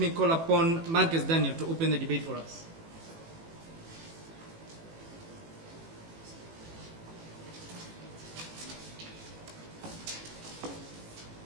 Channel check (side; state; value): left; late; 18 ms